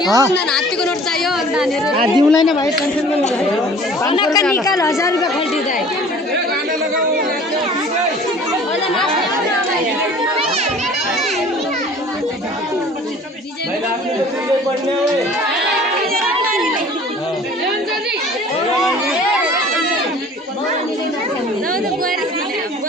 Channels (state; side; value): normal; both; correlation 0.48